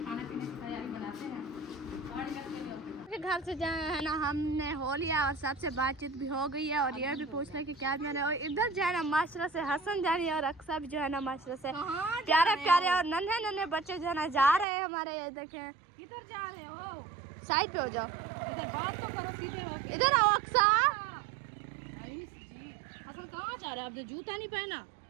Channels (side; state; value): left; drops out; at 14.7 s